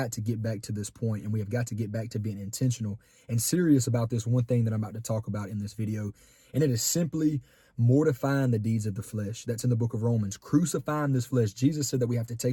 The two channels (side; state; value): both; identical; correlation 1.00